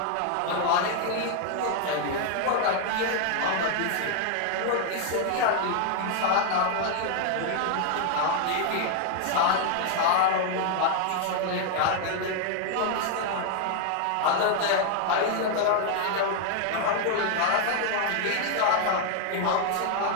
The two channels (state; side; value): different; both; correlation 0.00